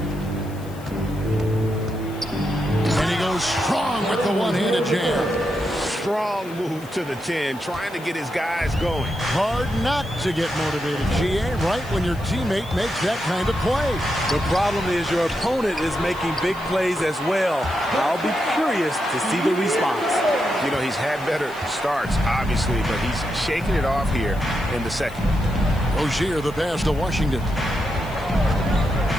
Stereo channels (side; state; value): left; noise; hiss, 22 dB below the sound